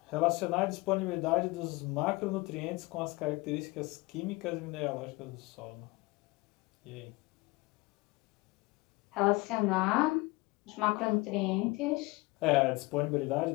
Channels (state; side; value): quieter; right; 23.3 dB